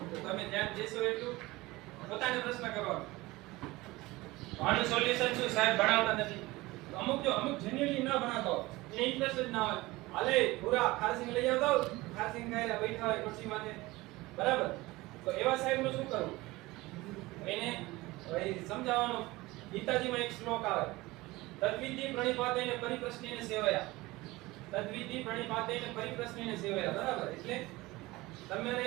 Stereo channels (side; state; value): left; quieter; 20.4 dB